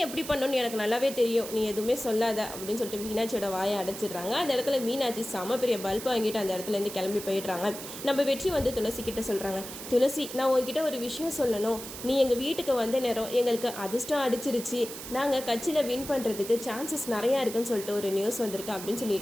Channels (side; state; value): right; noise; hiss, 10 dB below the sound